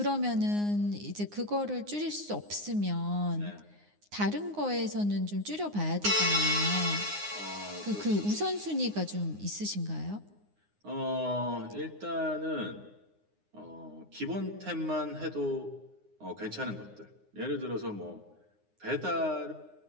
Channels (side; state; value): left; late; 9.7 ms